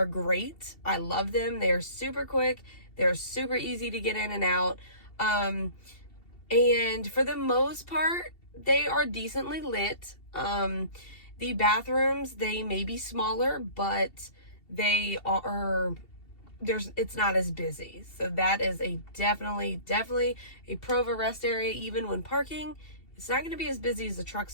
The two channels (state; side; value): late; right; 2.7 ms